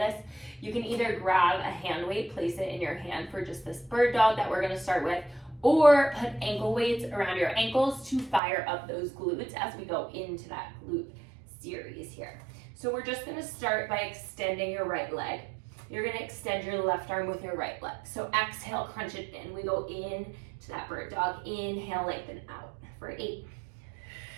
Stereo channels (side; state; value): left; drops out; at 8.4 s